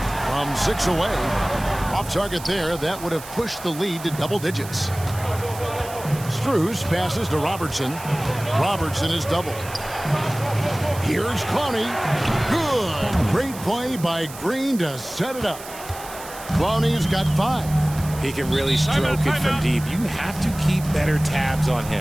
from 6 away. Off target there, that would have pushed the lead to double digits. Strus passes to Robertson. Robertson is doubled. Here's Clowney. Good. Great play by Green to set it up. Clowney's got 5. He can really stroke it from deep. You have to keep better tabs on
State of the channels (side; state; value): right; noise; hiss, 15 dB below the sound